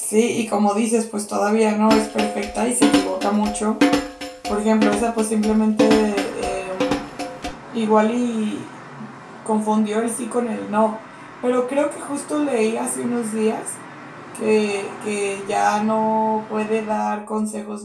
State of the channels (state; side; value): identical; both; correlation 1.00